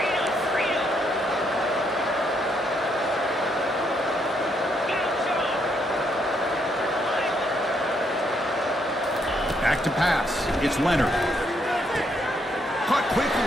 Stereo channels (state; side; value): normal; both; correlation 0.74